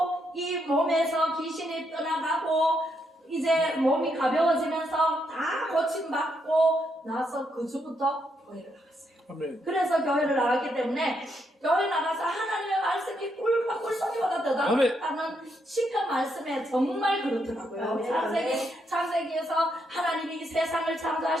이 몸에서 귀신이 떠나가고 이제 몸이 가벼워지면서 다 고침받고 나서 그 주부터 교회를 나갔어요. 아멘. 그래서 교회를 나왔기 때문에 교회 나가서 하나님의 말씀이 꿀송이보다 더 아멘. 낫다는 시편 말씀에 정말 그렇더라고요. 아멘. 창세기에서 하나님이 이 세상을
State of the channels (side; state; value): both; normal; correlation 0.78